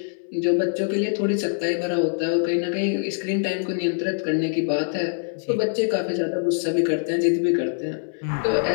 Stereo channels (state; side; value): silent; right; digital silence